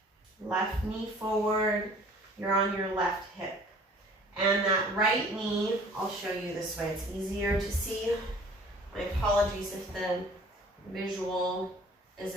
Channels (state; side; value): normal; both; correlation 0.50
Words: Left knee forward, you're on your left hip. And that right knee, I'll show you this way, it's easier to see. My apologies if the visual